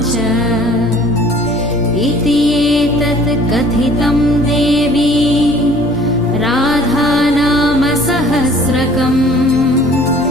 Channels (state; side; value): noise; left; rumble, 17 dB below the sound